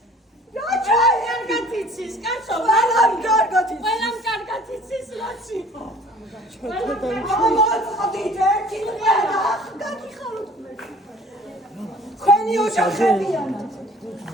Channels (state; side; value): normal; both; correlation 0.51